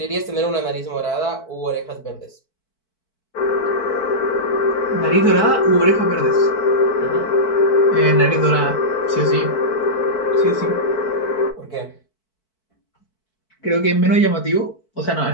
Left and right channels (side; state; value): right; late; 4.5 ms